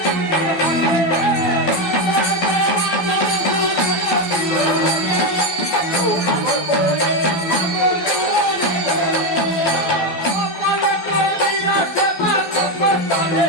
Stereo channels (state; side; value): late; right; 12 ms